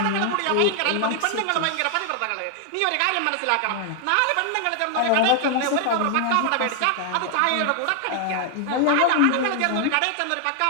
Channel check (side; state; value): both; different; correlation 0.00